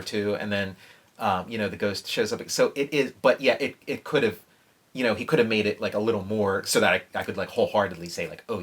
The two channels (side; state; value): both; identical; correlation 1.00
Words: 2, and then you know, the ghost shows up. So it is, but yeah, it could have, you know, he could have made it like a little more so that I could like wholeheartedly say like, oh